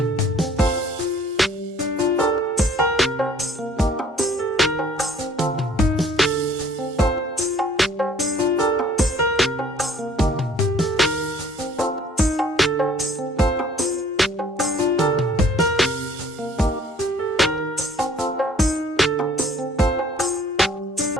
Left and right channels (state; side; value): normal; both; correlation 0.57